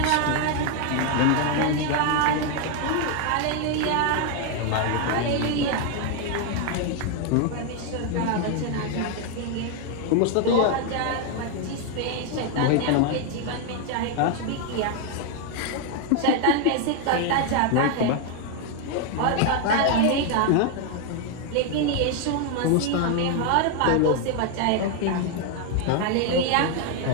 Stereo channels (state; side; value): different; both; correlation 0.01